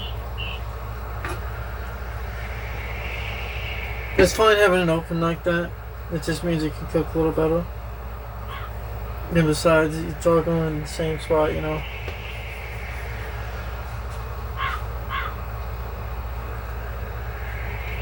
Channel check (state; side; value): identical; both; correlation 1.00